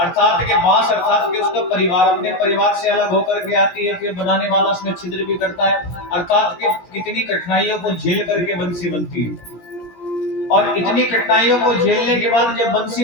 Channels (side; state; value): right; late; 17 ms